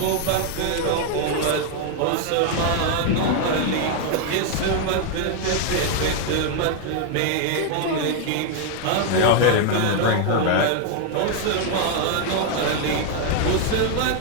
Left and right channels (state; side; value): different; both; correlation 0.00